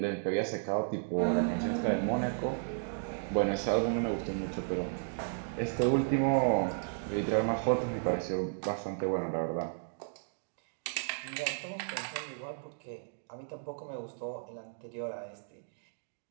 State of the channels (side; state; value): left; silent; digital silence